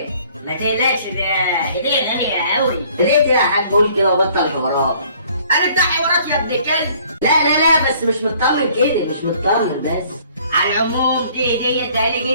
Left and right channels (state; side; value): inverted; both; correlation -0.57